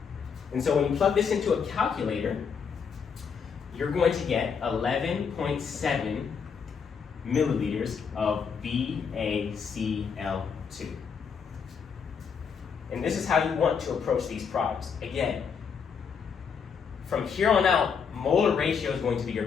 And so when you plug this into a calculator, you're going to get 11.7 milliliters of BaCl2. And this is how you want to approach these problems. Again, from here on out, molar ratio is going to be your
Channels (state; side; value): quieter; right; 6.4 dB